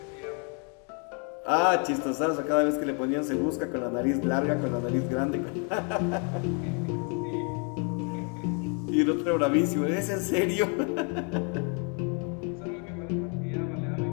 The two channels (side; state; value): right; quieter; 38.1 dB